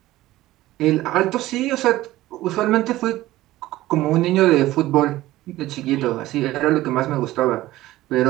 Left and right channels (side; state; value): left; quieter; 16.4 dB